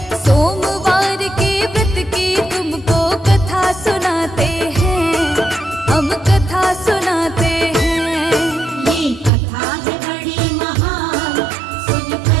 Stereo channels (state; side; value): drops out; left; at 9.3 s